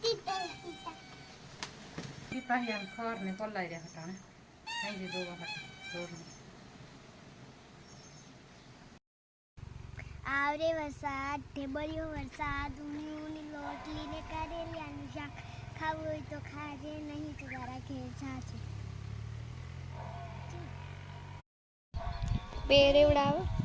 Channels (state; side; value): identical; both; correlation 1.00